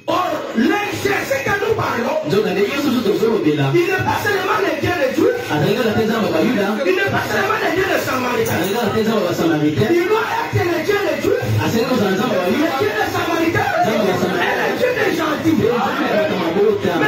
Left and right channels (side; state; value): both; identical; correlation 1.00